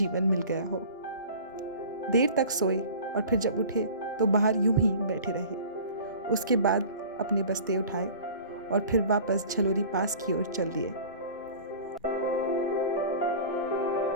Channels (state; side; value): inverted; both; correlation -0.41